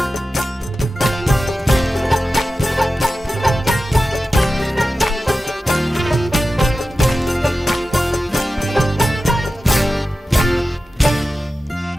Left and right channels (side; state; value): both; normal; correlation 0.94